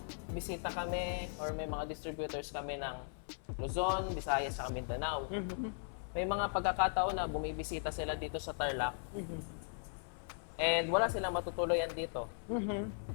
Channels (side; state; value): right; silent; 52 dB below the other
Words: bisita kami or may mga distributors kami ng Luzon, Visayas, at Mindanao. May mga pagkakataon na bumibisita sila dito sa Tarlac and wala silang matutuluyan dito.